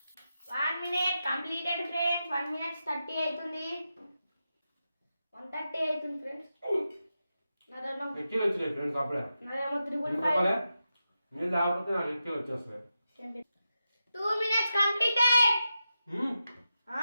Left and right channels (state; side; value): inverted; both; correlation -0.90